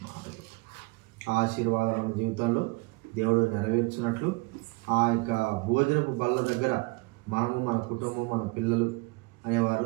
మాటలు ఆశీర్వాదం మన జీవితంలో దేవుడు నెరవేర్చినట్లు ఆ యొక్క భోజనపు బల్ల దగ్గర మనము, మన కుటుంబం, మన పిల్లలు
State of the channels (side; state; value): left; quieter; 26.2 dB